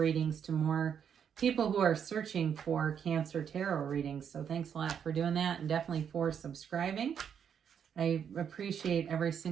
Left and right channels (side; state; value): left; quieter; 7.9 dB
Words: to more people who are searching for Cancer tarot readings. So thanks a lot for doing that, and definitely for subscribing. I appreciate every